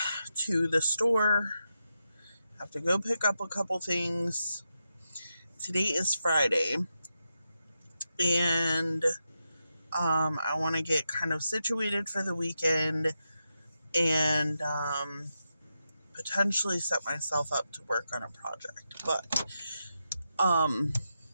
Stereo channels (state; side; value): inverted; both; correlation -0.87